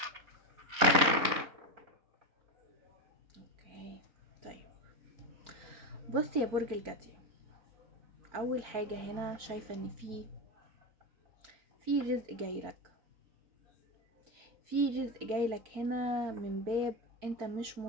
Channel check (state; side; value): late; left; 4.4 ms